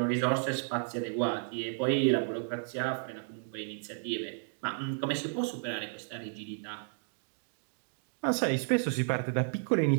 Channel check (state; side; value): silent; left; digital silence